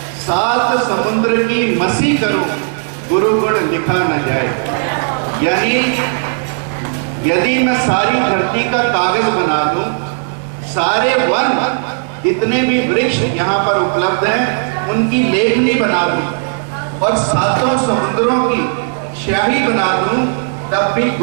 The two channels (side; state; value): left; silent; digital silence